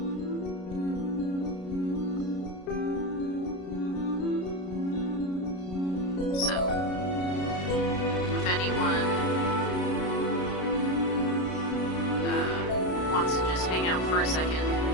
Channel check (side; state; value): right; late; 33 ms